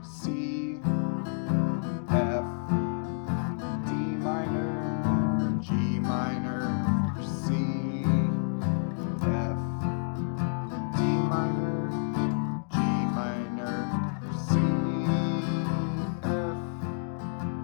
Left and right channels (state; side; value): silent; right; digital silence